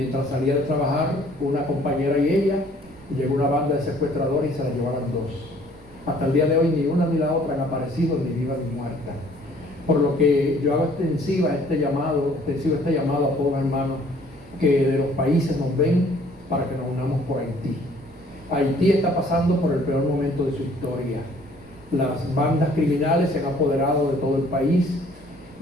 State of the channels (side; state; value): right; noise; rumble, 25 dB below the sound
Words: salía de trabajar, una compañera y ella, llegó una banda de secuestradores y se la llevaron dos. Hasta el día de hoy ni una ni la otra han aparecido, ni viva ni muerta. Por lo que yo hago extensivo este llamado a todos los hermanos que de los países nos ven, para que nos unamos por Haití. Haití está pasando por el peor momento de su historia. Las bandas criminales se han apoderado de todo el país